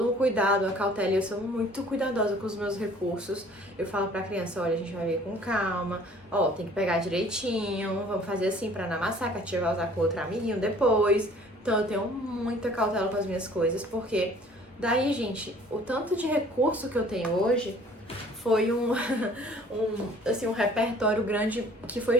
um cuidado, uma cautela, e eu sou muito cuidadosa com os meus recursos. Eu falo pra criança, olha, a gente vai ver com calma, ó, tem que pegar direitinho, vamos fazer assim pra não amassar, que a tia vai usar com outro amiguinho depois. Então eu tenho muita cautela com as minhas coisas, porque daí, gente, o tanto de recurso que eu tenho hoje foi um repertório grande que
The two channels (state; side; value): normal; both; correlation 0.53